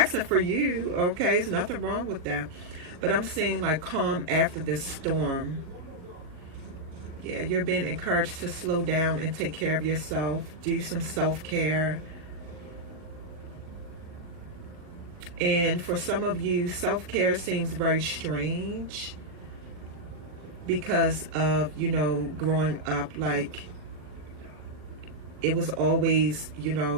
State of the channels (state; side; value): late; left; 40 ms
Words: for you, okay? There's nothing wrong with that. But I'm seeing like calm after this storm. Yeah, you're being encouraged to slow down and take care of yourself. Do some self-care. And for some of you, self-care seems very strange because of, growing up, like it was always,